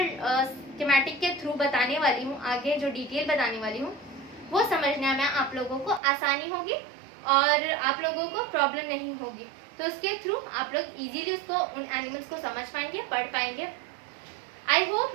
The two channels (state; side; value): drops out; left; at 6.0 s